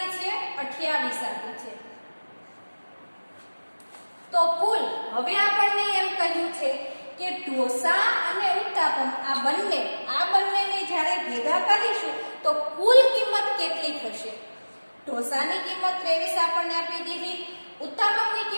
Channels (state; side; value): inverted; both; correlation -1.00